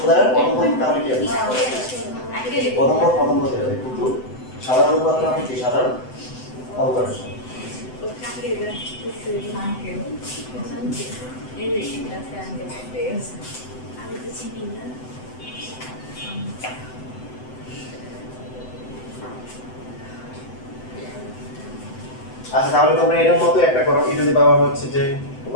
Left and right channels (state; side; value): late; right; 7.9 ms